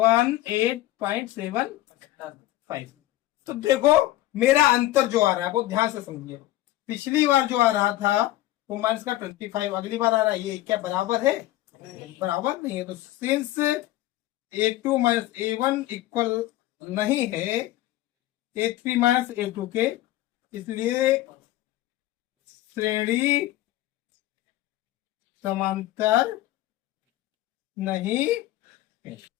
तो देखो मेरा अंतर जो आ रहा है वो ध्यान से समझिए। पिछली बार जो आ रहा था वो माइनस का 25, अगली बार आ रहा है ये क्या बराबर है, बराबर नहीं है। तो since A2 minus A1 equal नहीं है A3 माइनस A2 के, इसलिए श्रेणी समांतर नहीं है।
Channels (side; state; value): right; quieter; 15.6 dB